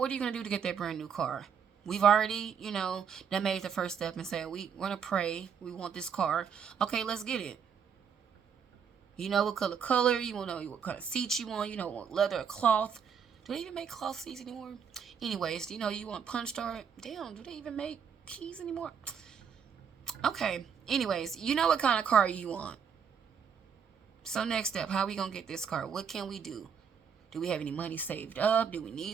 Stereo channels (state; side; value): quieter; left; 7.1 dB